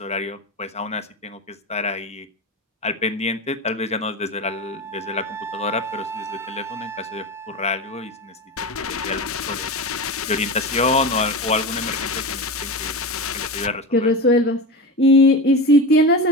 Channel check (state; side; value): normal; both; correlation 0.24